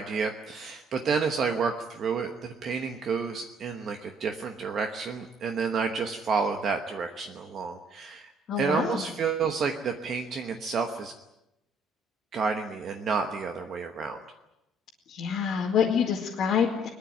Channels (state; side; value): normal; both; correlation 0.62